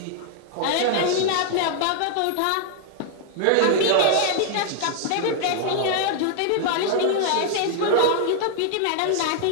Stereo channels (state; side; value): different; both; correlation 0.00